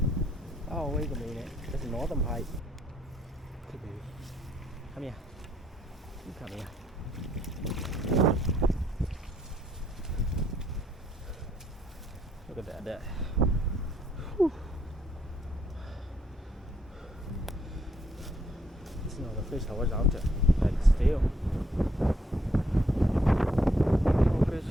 Oh, wait a minute. There's a northern pike. Okay, baby. Come here. You come here. Look at that. Whew. This is not the fish I was after. Like still. Oh, fish.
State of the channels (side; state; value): both; normal; correlation 0.71